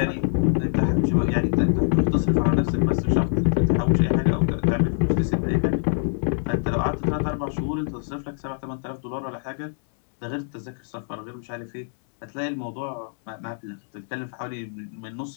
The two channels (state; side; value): silent; right; digital silence